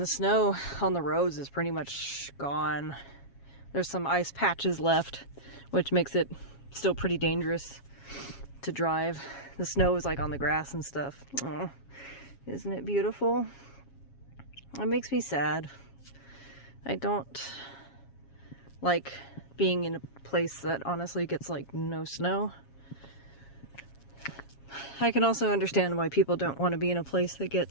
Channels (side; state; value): right; late; 7.3 ms